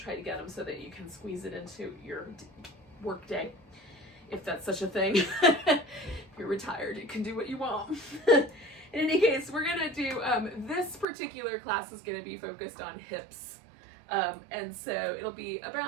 to get them so that you can squeeze it into your work day, if that's such a thing. If you're retired, you can do what you want. In any case, we're gonna do, this particular class is gonna be focused on hips. And so it'll be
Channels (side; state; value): left; drops out; at 11.1 s